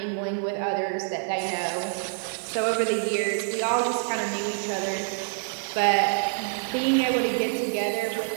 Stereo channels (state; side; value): silent; left; digital silence